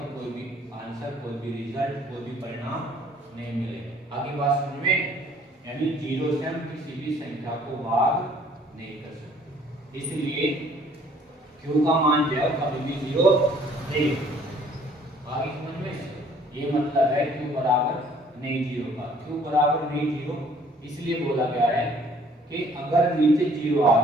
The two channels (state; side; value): normal; both; correlation 0.58